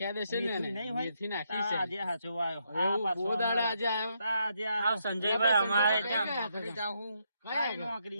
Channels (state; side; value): inverted; both; correlation -0.77